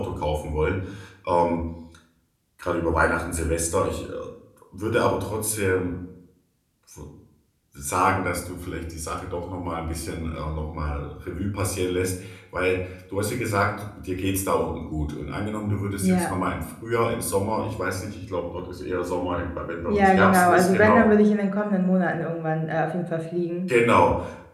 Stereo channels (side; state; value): both; identical; correlation 1.00